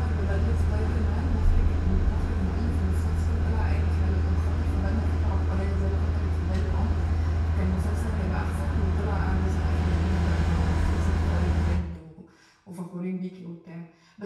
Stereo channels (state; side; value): identical; both; correlation 1.00